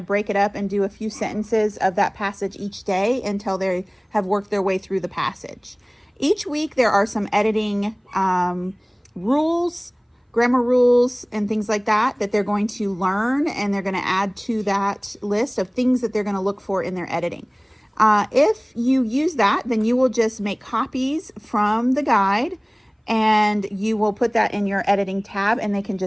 break it up and do a few sentences of that passage each day until they have worked their way through the passage. Each week there are some editing rules, grammar rules, and things like that they're going to learn, and they're going to add to that list of things that they're going to look for in their editing. If you use that, then you will just make copies from the guide, and you will put that in your editing tab, and they can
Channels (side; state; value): both; identical; correlation 1.00